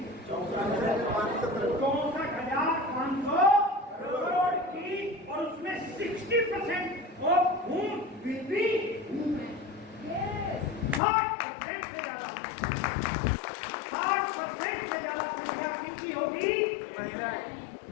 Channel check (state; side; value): drops out; right; at 11.0 s